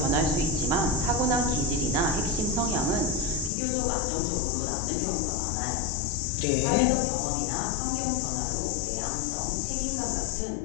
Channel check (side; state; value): right; drops out; at 3.5 s